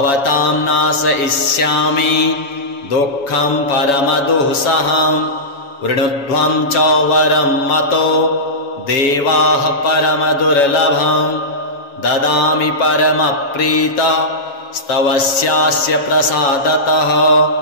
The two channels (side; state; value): right; late; 7.1 ms